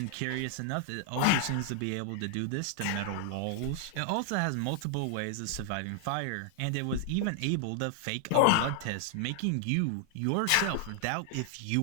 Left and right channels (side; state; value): both; different; correlation 0.00